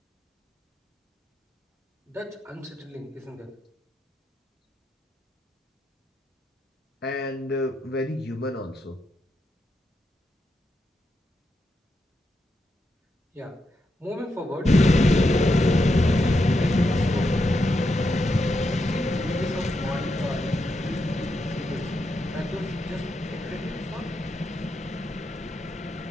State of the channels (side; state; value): both; normal; correlation 0.84